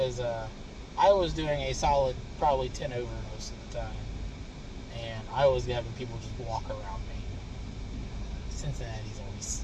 I was doing a solid probably 10 over most of the time. And I was having people just walk around me.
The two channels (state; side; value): identical; both; correlation 1.00